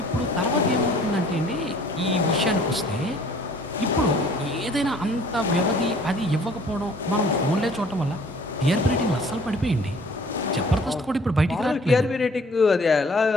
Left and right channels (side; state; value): both; normal; correlation 0.54